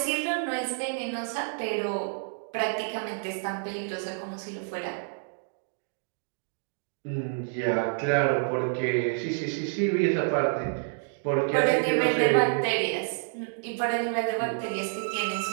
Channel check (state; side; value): silent; left; digital silence